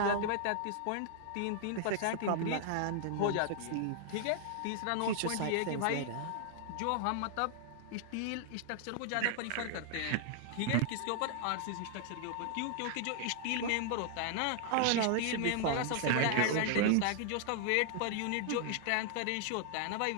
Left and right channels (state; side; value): different; both; correlation 0.00